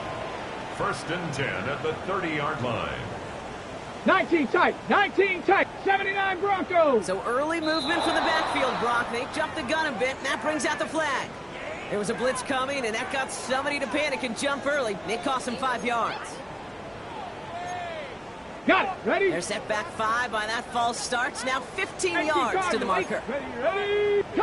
First and 10 at the 30-yard line. 19 tight. 19 tight. 79 Broncos. So early movement from the backfield, Brock. They jumped the gun a bit, and that brings out the flag. There was a blitz coming, and that got somebody to panic and jump early. It cost them 5 yards. Got it. Ready? They're set back 5 by that false start. Now 15 yards to the marker. Ready.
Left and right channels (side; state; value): both; identical; correlation 1.00